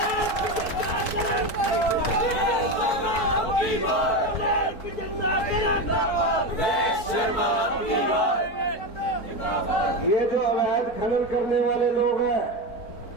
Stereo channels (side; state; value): right; late; 4.6 ms